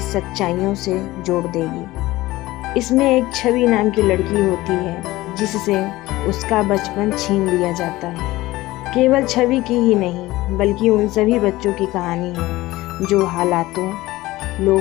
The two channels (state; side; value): quieter; right; 18.2 dB